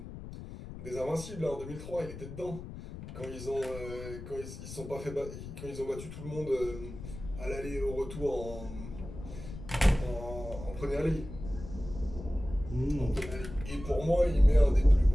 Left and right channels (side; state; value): left; noise; rumble, 11 dB below the sound